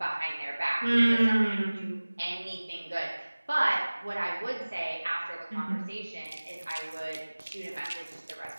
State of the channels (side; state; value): both; inverted; correlation -1.00